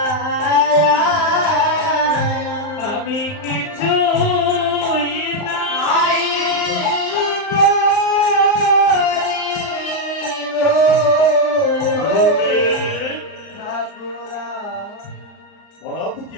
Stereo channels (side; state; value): right; late; 38 ms